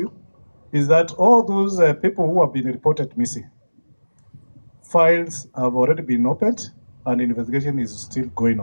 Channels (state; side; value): inverted; both; correlation -1.00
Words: is that all those people who have been reported missing, files have already been opened and investigation is still going